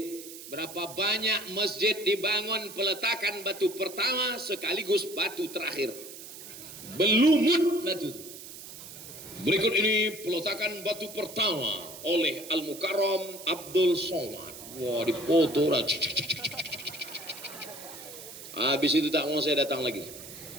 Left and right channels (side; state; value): right; noise; hiss, 13 dB below the sound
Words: Berapa banyak masjid dibangun peletakan batu pertama sekaligus batu terakhir. Belumut batu itu. Berikut ini peletakan batu pertama oleh Al-Mukarram Abdul Somad. Wah, dipoto. Habis itu tak mau saya datang lagi.